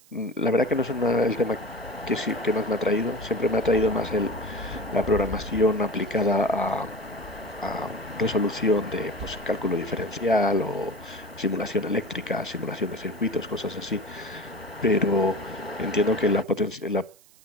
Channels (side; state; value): right; noise; hiss, 27 dB below the sound